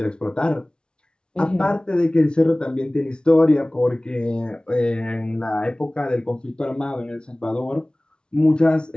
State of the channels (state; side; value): late; right; 0.055 ms